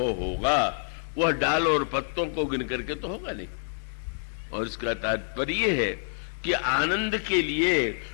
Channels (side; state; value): right; silent; digital silence